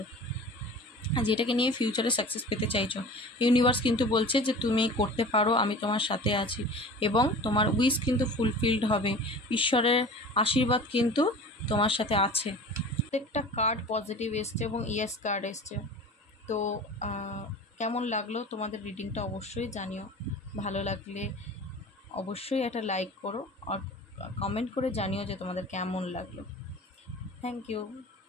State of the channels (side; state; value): both; normal; correlation 0.39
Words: যেটাকে নিয়ে ফিউচারে সাকসেস পেতে চাইছো, ইউনিভার্স কিন্তু বলছে যে তুমি করতে পারো, আমি তোমার সাথে আছি, এবং তোমার উইশ কিন্তু ফুলফিলড হবে। ঈশ্বরের আশীর্বাদ কিন্তু তোমার সাথে আছে। প্রত্যেকটা কার্ড পজিটিভ এসছে এবং ইয়েস কার্ড এসছে। তো কেমন লাগলো তোমাদের রিডিংটা অবশ্যই জানিও। ভালো লাগলে অবশ্যই একটা লাইক করো, আর কমেন্ট করে জানিও যে তোমাদের কেমন লাগলো। Thank you,